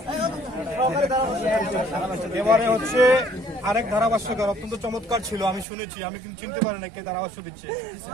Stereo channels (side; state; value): left; drops out; at 5.7 s